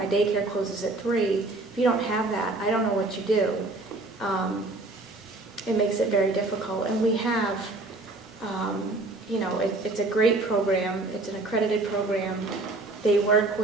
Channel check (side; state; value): left; quieter; 3.0 dB